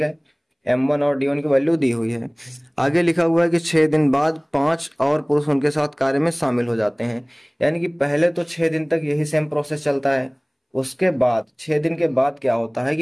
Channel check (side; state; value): both; identical; correlation 1.00